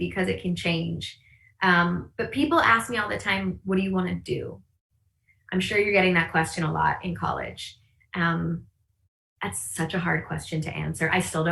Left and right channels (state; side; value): identical; both; correlation 1.00